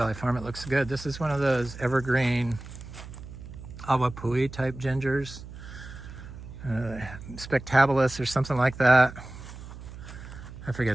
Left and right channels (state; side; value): noise; right; hum, 13 dB below the sound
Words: Farm. It looks good. This is one of those evergreen awapui type gingers. Spectabilis or something like that. I